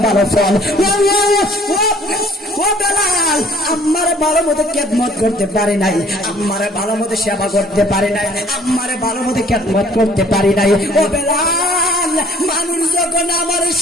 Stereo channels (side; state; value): both; normal; correlation 0.58